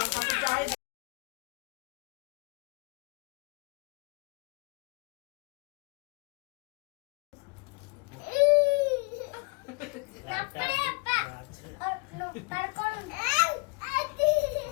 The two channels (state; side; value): quieter; right; 28.4 dB